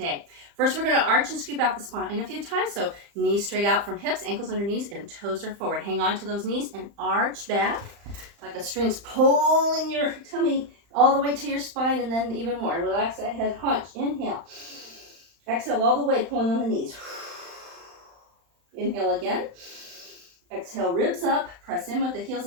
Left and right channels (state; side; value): late; left; 35 ms